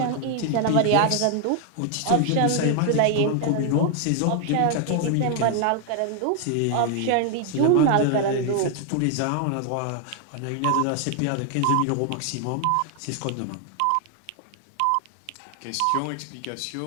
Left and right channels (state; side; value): different; both; correlation 0.00